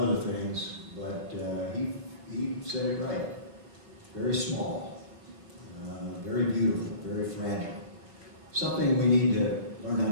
things, but he said it right. Very small, very beautiful, very fragile. Something we need to learn how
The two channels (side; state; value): left; late; 5.3 ms